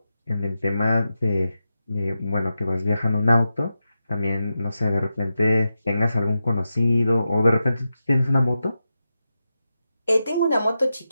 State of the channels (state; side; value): inverted; both; correlation -0.90